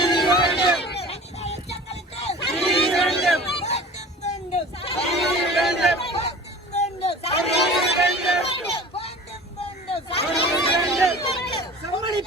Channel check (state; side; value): normal; both; correlation 0.40